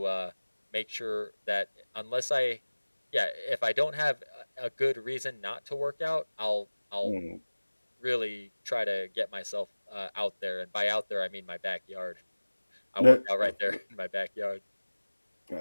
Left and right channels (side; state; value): both; inverted; correlation -1.00